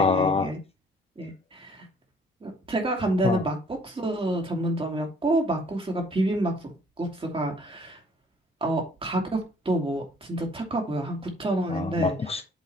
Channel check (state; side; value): normal; both; correlation 0.58